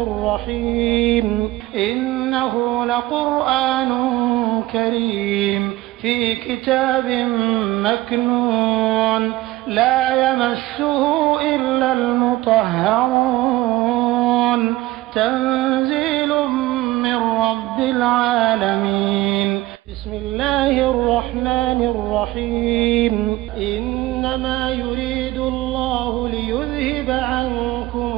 الرحيم إنه لقرآن كريم في كتاب مكنون لا يمسه إلا المطهرون تنزيل من رب العالمين بسم الله الرحمن الرحيم إنما يريد الله ليذهب عنكم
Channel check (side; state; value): left; quieter; 17.7 dB